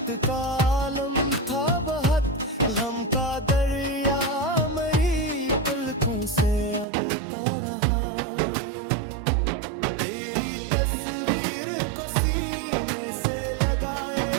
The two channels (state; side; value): drops out; left; at 6.9 s